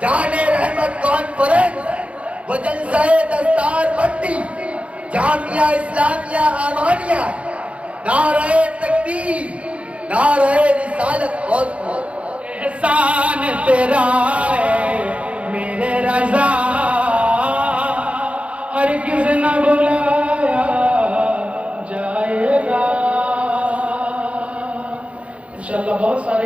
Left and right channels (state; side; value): late; left; 0.063 ms